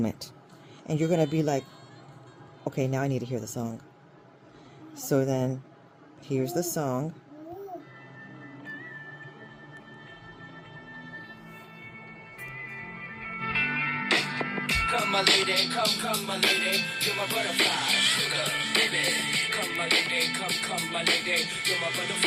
And you're going to be like, okay, now I need to hear the song. So then, here's the song. Come my lady, come my lady, you're my butterfly, sugar, baby. Come my lady, come my lady, you're my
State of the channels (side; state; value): both; identical; correlation 1.00